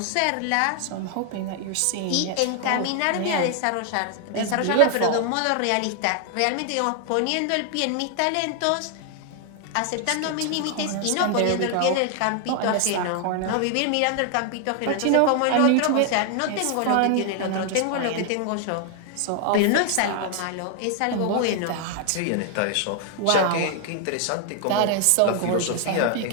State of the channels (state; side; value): different; both; correlation 0.00